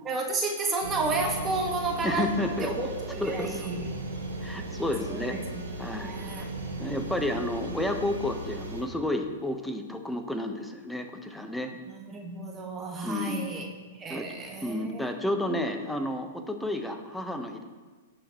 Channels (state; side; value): normal; both; correlation 0.35